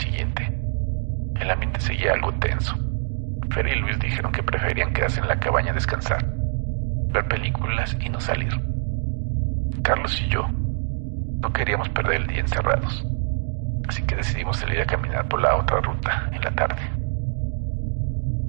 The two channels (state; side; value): silent; left; 62 dB below the other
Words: el ambiente seguía algo tenso. Fer y Luis dijeron que preferían quedarse en la cabaña a descansar, ver películas y no salir. Carlos y yo no queríamos perder el día encerrados, así que decidimos salir a caminar por la otra ruta en la tarde.